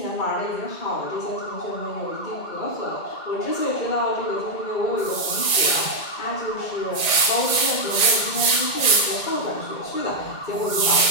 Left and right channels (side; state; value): right; late; 2.2 ms